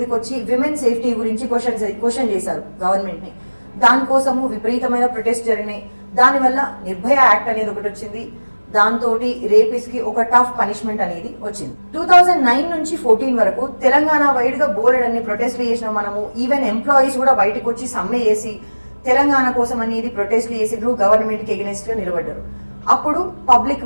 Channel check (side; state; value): both; inverted; correlation -1.00